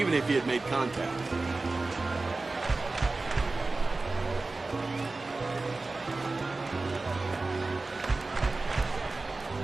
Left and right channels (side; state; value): left; quieter; 3.4 dB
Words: if he had made contact.